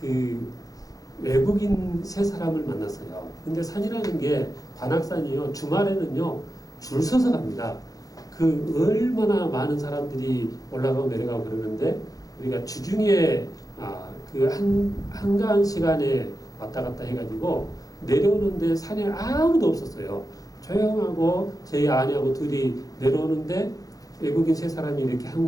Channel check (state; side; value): late; right; 0.17 ms